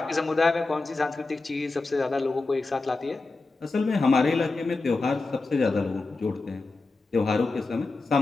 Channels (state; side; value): quieter; right; 3.6 dB